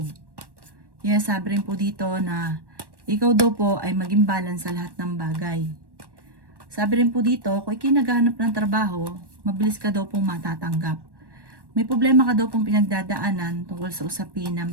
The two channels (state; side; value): late; left; 1.1 ms